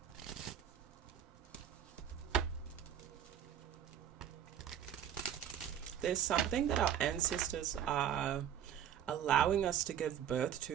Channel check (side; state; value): left; quieter; 9.7 dB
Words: There's something that our ancestors are allowing us to give birth